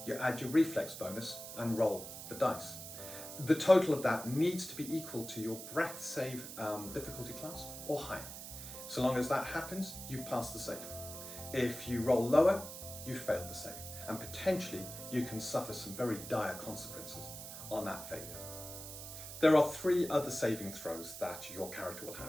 you add your reflex bonus and roll the dice. The total of that needs to be equal to your breath save difficulty class or higher. So long as that happens, you've passed the save. If you roll lower, you've failed the save, and potentially you can suffer some very dire consequences on that failure. There are 3 other saving throws that your character will have,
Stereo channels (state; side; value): noise; right; hiss, 10 dB below the sound